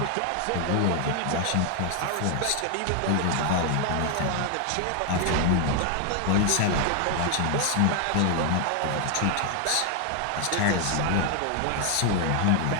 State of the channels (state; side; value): different; both; correlation 0.00